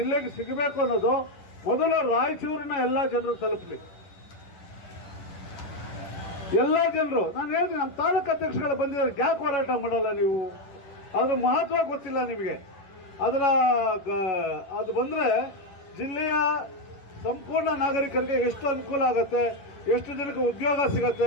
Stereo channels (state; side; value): late; right; 10 ms